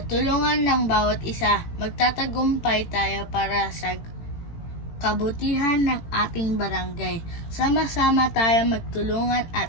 tulungan ng bawat isa, magtatagumpay tayo para sa kabutihan ng ating barangay. Sama-sama tayo magtulungan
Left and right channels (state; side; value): late; right; 18 ms